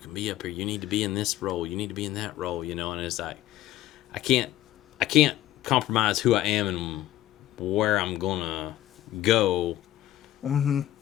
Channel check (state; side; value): quieter; right; 14.0 dB